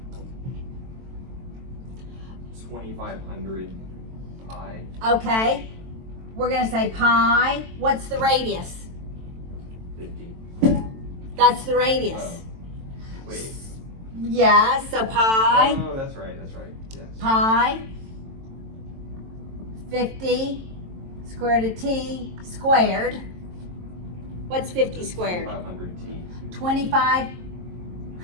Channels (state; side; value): late; left; 22 ms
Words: 2500 pi. Okay. We're going to say pi. What's the radius? 50. That's the radius. Oh. Wait. Yeah, so pi. Oh, that's right, yes. Pi 50 square root of t squared. What's 50 squared? 2500t.